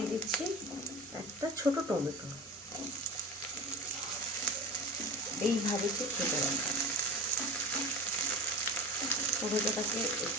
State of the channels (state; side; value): normal; both; correlation 0.32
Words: দিচ্ছি একটা ছোট টমেটো, এইভাবে একটু কেটে রাখা। টমেটোটাকে